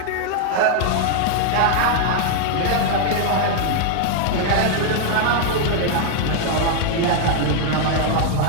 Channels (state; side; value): different; both; correlation 0.00